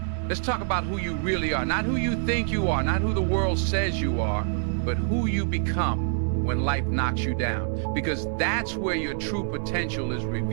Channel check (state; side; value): silent; left; 61 dB below the other